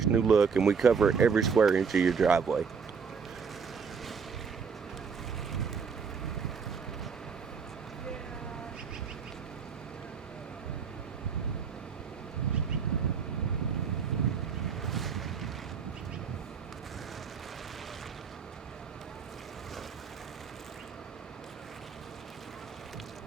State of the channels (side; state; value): left; quieter; 6.0 dB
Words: new look, and we cover every square inch of your driveway.